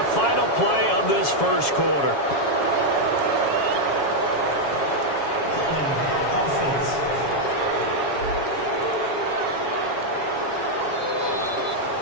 final play of this 1st quarter.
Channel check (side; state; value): right; late; 7.2 ms